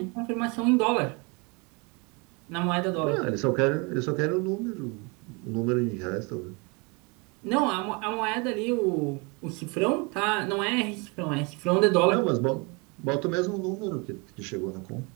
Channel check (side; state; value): left; quieter; 30.1 dB